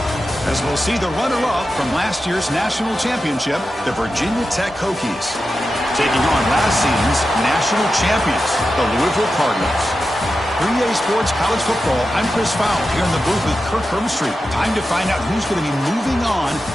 As we'll see the runner-up from last year's national championship, the Virginia Tech Hokies, taking on last season's national champions, the Louisville Cardinals. 3A Sports College Football, I'm Chris Fowler here in the booth with Kirk Herbstreit. Time to find out who's going to be moving on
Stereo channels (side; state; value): both; normal; correlation 0.91